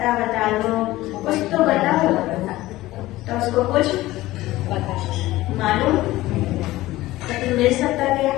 बता दो, कुछ तो बताओ। तो उसको कुछ मालूम तो मिल सकता क्या?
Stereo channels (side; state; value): right; quieter; 17.2 dB